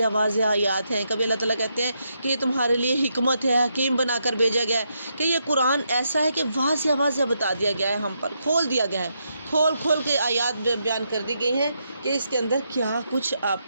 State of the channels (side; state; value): both; inverted; correlation -0.80